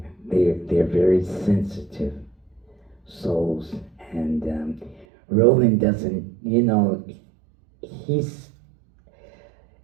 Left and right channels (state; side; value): drops out; left; at 5.1 s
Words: They're very sensitive souls, and Roland doesn't, he's